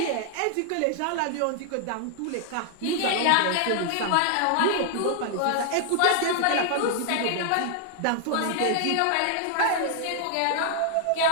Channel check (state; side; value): different; both; correlation 0.00